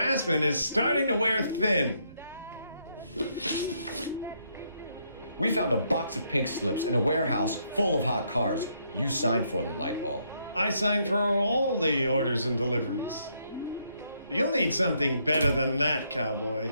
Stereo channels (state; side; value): inverted; both; correlation -0.74